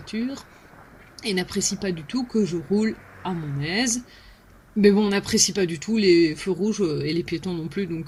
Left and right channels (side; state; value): both; identical; correlation 1.00